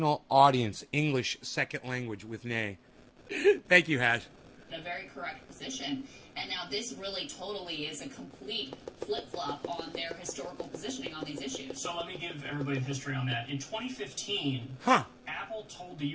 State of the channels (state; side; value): identical; both; correlation 1.00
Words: audience, English second language with Nay. Thank you, Hash. a very correct position. And now this really totally is a complete flip-flop on their historical positioning on these issues. So let me give everybody the history on that. In 2015, Apple told the